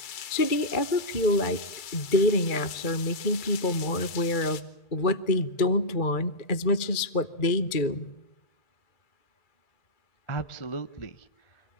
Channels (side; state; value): right; late; 2.3 ms